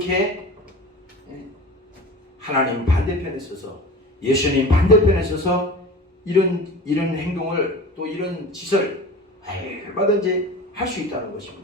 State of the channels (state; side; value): normal; both; correlation 0.35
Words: 하나님 반대편에 서서, 예수님 반대편에 서서 이런 행동을, 또 이런 짓을 얼마든지 할 수 있다는